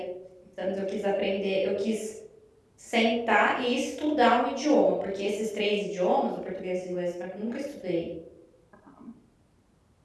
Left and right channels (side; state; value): both; identical; correlation 1.00